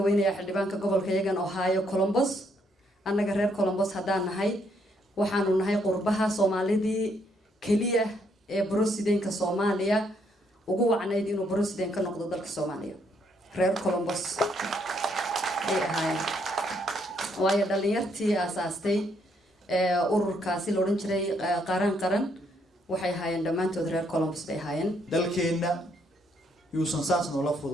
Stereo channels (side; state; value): both; normal; correlation 0.72